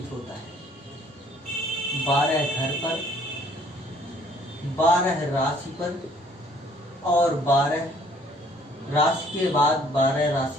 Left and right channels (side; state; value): both; normal; correlation 0.59